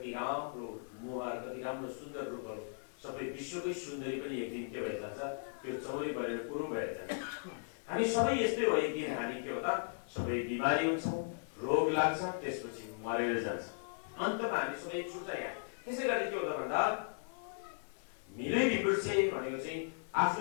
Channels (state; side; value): silent; right; 53 dB below the other